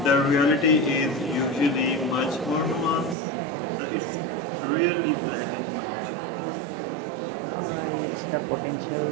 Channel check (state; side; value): drops out; left; at 3.2 s